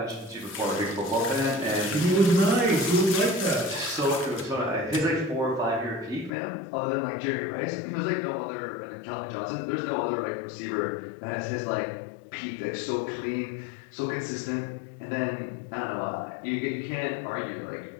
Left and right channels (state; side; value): drops out; right; at 6.3 s